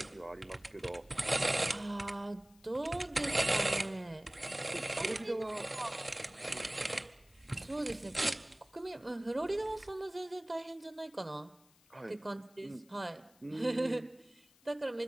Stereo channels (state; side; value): noise; left; hiss, 29 dB below the sound